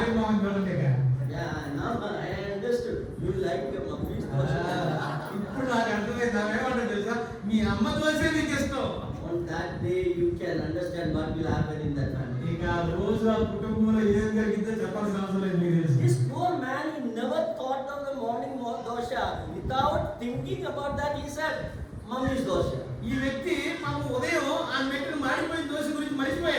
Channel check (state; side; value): identical; both; correlation 1.00